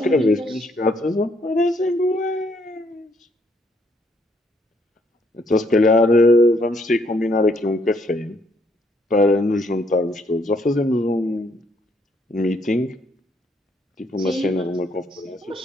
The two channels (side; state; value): both; normal; correlation 0.70